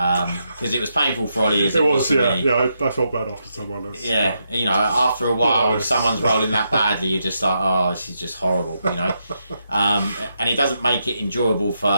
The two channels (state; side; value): inverted; both; correlation -0.82